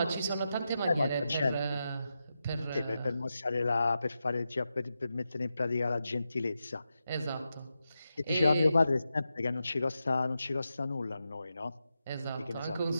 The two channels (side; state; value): both; inverted; correlation -0.89